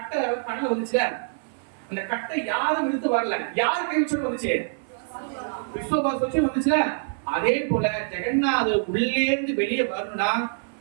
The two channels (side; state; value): left; silent; 59 dB below the other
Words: கடல வந்துச்சுல, அந்த கட்டை யாரும் இழுத்து வரல, யாரு கை வச்சு வந்துச்சு? விஸ்வபாஸ் வச்சு வந்துச்சுல. அதே போல ஜெகநாதர் உள்ளே இருந்து வெளியே வரணும்னா